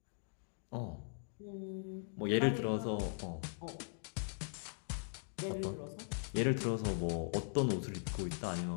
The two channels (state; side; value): silent; right; digital silence